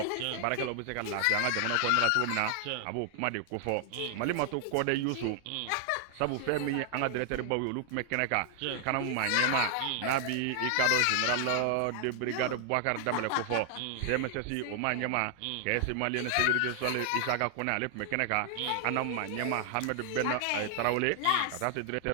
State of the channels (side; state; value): both; different; correlation 0.00